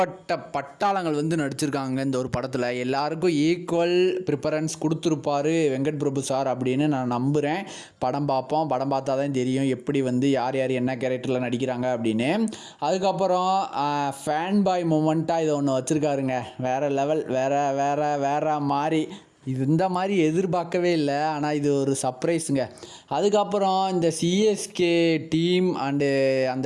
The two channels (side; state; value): both; identical; correlation 1.00